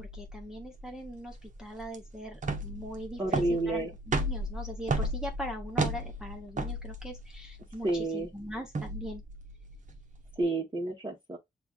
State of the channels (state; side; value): normal; both; correlation 0.59